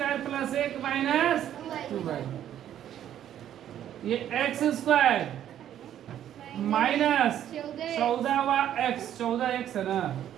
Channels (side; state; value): left; quieter; 10.9 dB